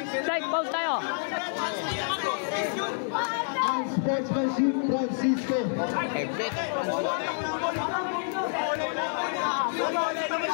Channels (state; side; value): silent; right; 59 dB below the other